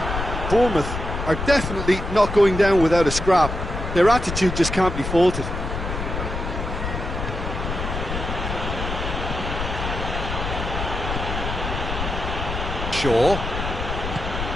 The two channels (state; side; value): noise; left; rumble, 5 dB below the sound